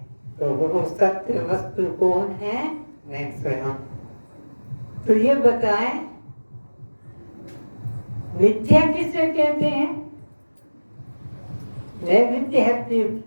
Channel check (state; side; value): inverted; both; correlation -1.00